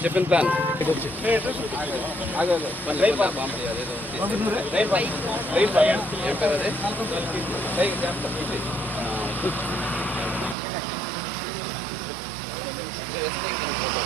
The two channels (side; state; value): left; drops out; at 10.6 s